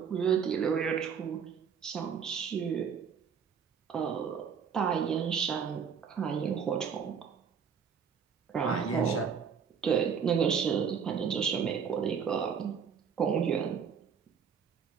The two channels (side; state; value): left; quieter; 6.9 dB